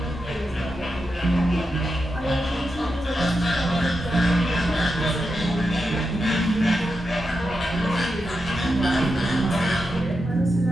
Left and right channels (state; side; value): normal; both; correlation 0.88